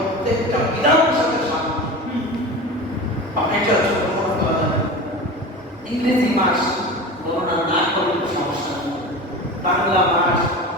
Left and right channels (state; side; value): normal; both; correlation 0.31